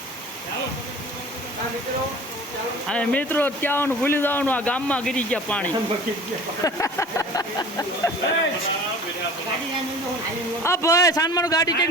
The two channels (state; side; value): normal; both; correlation 0.43